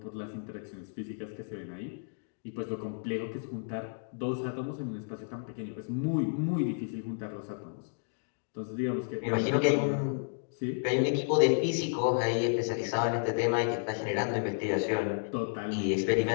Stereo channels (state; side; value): silent; right; digital silence